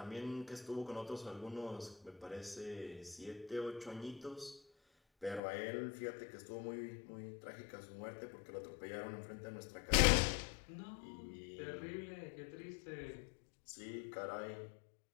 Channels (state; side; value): drops out; right; at 5.4 s